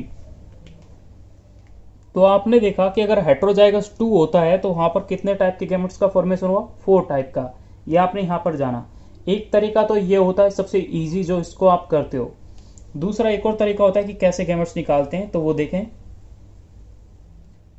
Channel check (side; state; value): both; identical; correlation 1.00